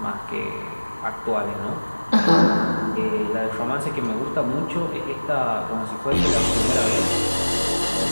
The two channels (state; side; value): inverted; both; correlation -1.00